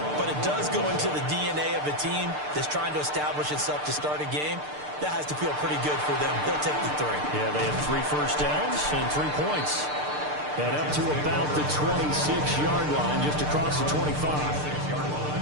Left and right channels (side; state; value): left; late; 6.7 ms